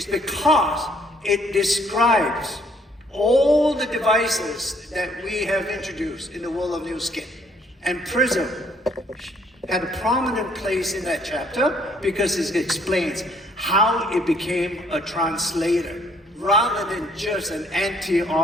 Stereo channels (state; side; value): normal; both; correlation 0.63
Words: because it describes all the devices that we have introduced in the world of Nu Skin. And Prism had a prominent place in that chapter because it explains how it became a translator rather than just an